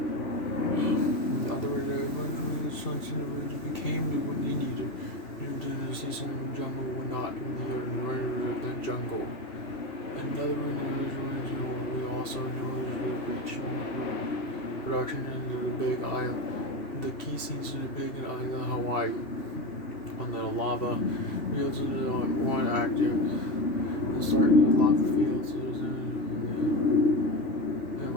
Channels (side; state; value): right; late; 3.2 ms